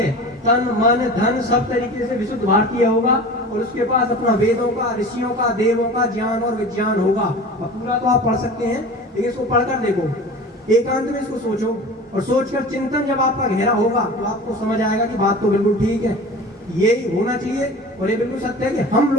तन मन धन सब तरीके से विशुद्ध भारतीय होगा और उसके पास अपना वेदों का, ऋषियों का, देवों का ज्ञान और विज्ञान होगा। अब पूरा तो आप पढ़ सकते हैं, लेकिन इसको पढ़कर देखो, एकांत में इसको सोचो और सोचकर चिंतन जब आपका गहरा होगा तो आपको समझ आएगा कि बात तो बिल्कुल ठीक है, यही होना चाहिए। और ये बिल्कुल सत्य है कि हम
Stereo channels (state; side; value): normal; both; correlation 0.37